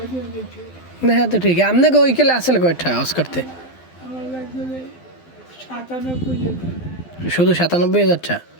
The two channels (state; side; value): late; right; 12 ms